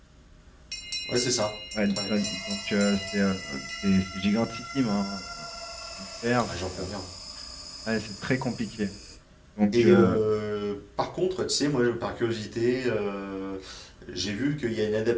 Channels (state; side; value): identical; both; correlation 1.00